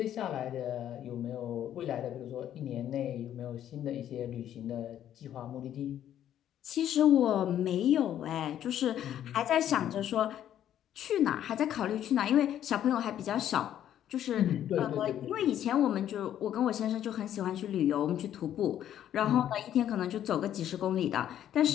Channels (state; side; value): quieter; right; 10.9 dB